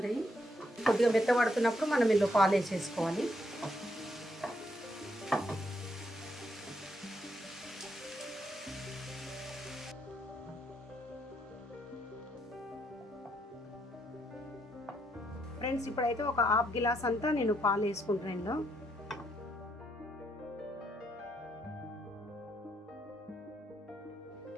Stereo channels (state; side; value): normal; both; correlation 0.75